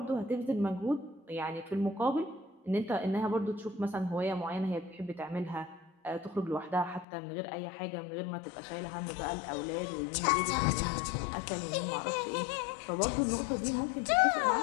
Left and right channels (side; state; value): right; drops out; at 7.1 s